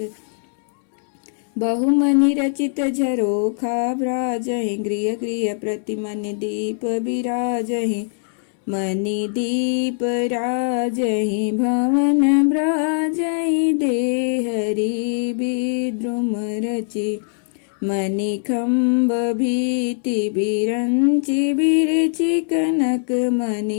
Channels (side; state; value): right; silent; digital silence